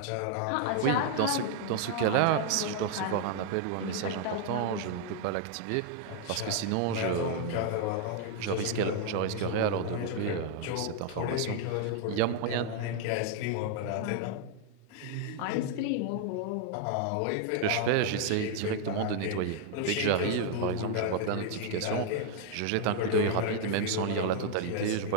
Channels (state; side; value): different; both; correlation 0.00